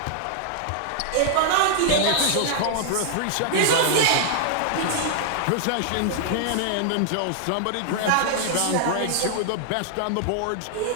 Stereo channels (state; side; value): different; both; correlation -0.01